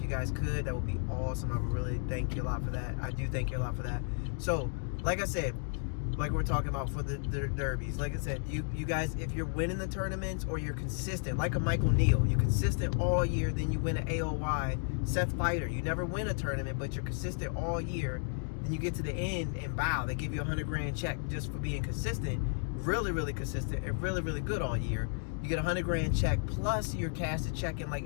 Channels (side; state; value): right; silent; 56 dB below the other